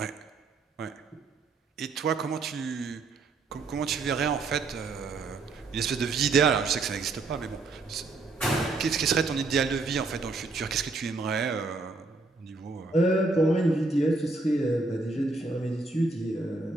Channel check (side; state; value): left; quieter; 3.5 dB